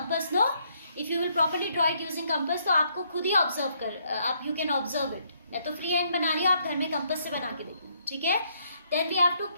no, if you will properly draw it using compass, तो आपको खुद ही ऑब्जर्व कर, आप यू कैन ऑब्जर्व इट. मैं तो फ्री हैंड बना रही हूँ, आप घर में कंपास से बना के देखो. ठीक है. Then we have to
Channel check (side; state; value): both; inverted; correlation -0.71